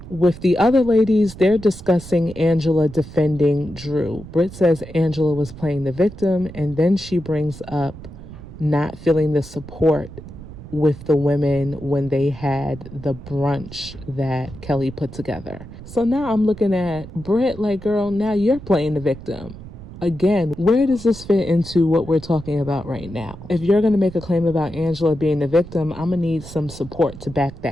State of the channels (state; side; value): noise; right; rumble, 15 dB below the sound